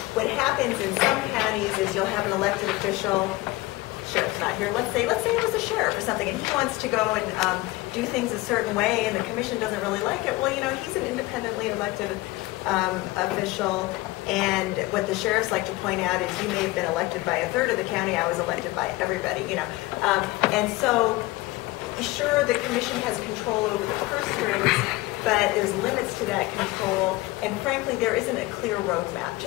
what happens in some counties is you'll have an elected official, sheriff's not here, let's say it was a sheriff or something, and he wants to go and do things a certain way, and the commission doesn't really like it. Well, he's an independently elected official, and what the sheriffs like to point out is you may have been elected by a third of the county, I was elected by everybody, and so sure, the commission has control over the purse strings, but there's limits to that control, and frankly, there isn't a clear roadmap.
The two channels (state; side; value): quieter; right; 19.7 dB